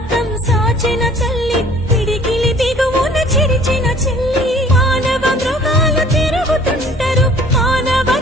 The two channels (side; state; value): both; normal; correlation 0.52